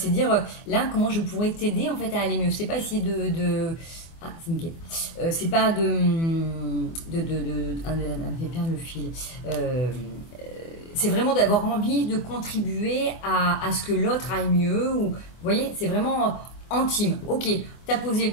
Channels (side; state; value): right; late; 24 ms